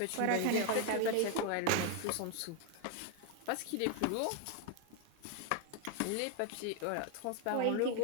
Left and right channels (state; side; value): different; both; correlation 0.00